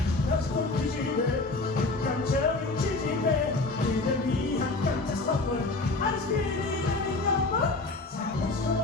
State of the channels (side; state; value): right; quieter; 3.3 dB